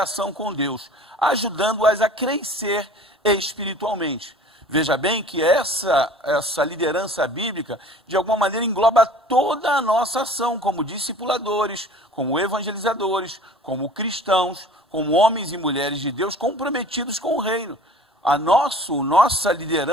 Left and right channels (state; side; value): normal; both; correlation 0.46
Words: com Deus, ajudando-as a crescer espiritualmente. Veja bem que essa liderança bíblica, de alguma maneira, engloba toda a nossa ação, como discipuladores, como evangelizadores, como cristãos, como homens e mulheres de Deus comprometidos com o reino. A nossa